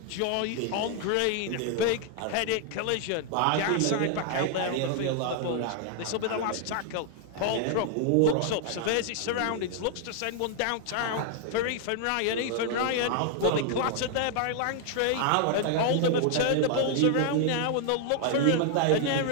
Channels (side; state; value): both; different; correlation 0.00